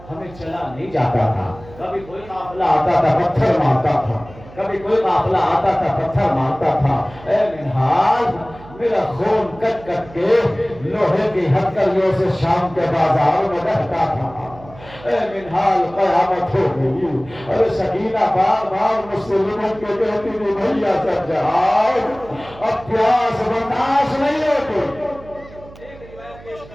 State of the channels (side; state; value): right; noise; hum, 20 dB below the sound